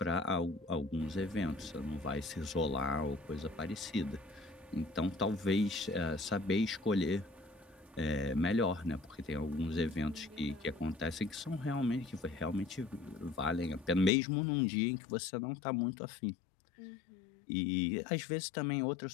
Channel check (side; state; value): right; drops out; at 14.1 s